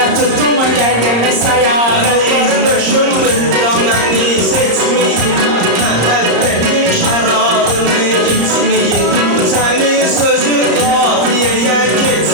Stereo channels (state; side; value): late; left; 34 ms